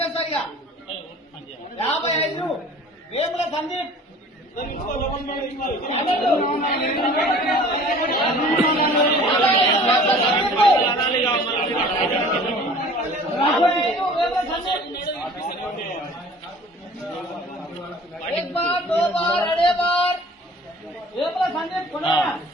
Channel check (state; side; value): normal; both; correlation 0.47